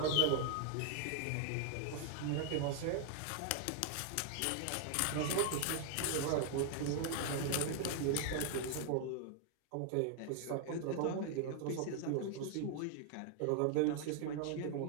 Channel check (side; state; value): both; different; correlation 0.00